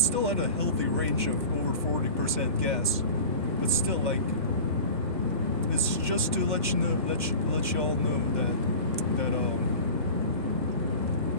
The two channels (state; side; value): inverted; both; correlation -0.36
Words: at a healthy range of over 40% gas, but still like it's just to let you all know that